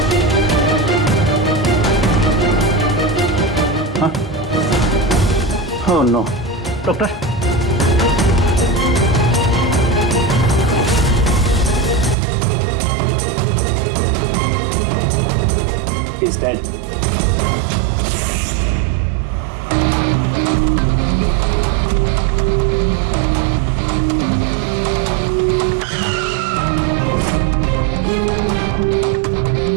हाँ? Oh no. Doctor, He's dead.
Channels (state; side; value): drops out; left; at 12.2 s